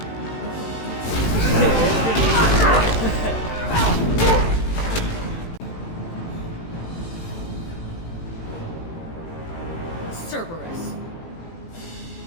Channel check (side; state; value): right; late; 18 ms